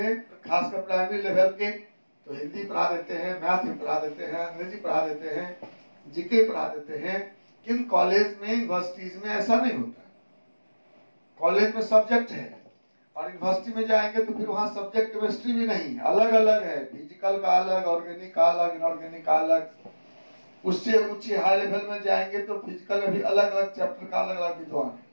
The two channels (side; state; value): both; inverted; correlation -1.00